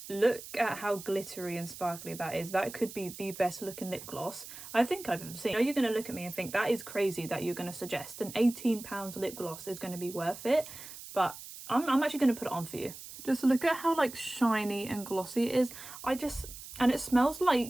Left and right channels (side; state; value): right; noise; hiss, 13 dB below the sound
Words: Look at how glittery and sparkly that is. That could be the best looking lip gloss I think I've ever seen. I know you're going to look at me and think that is crazy that you're going to suggest an £18 lip gloss is going to be worth it, but I'm actually going to put it on for you. Just look at how like shiny and glossy it is. And it smells